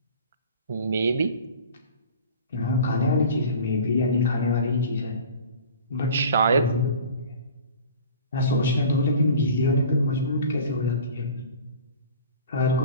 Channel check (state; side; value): inverted; both; correlation -0.41